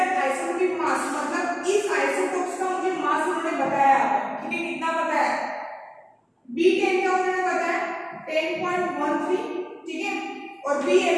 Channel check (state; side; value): identical; both; correlation 1.00